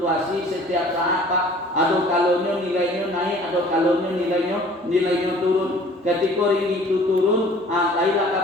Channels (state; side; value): normal; both; correlation 0.50